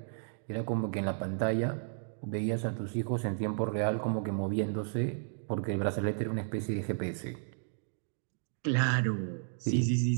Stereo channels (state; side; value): silent; left; digital silence